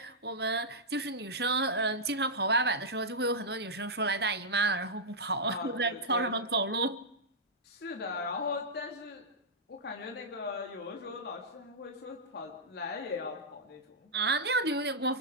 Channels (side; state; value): both; normal; correlation -0.11